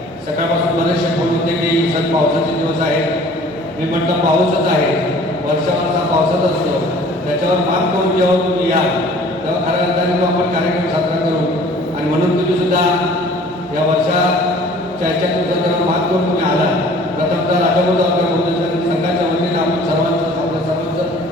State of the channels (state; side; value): noise; right; hum, 30 dB below the sound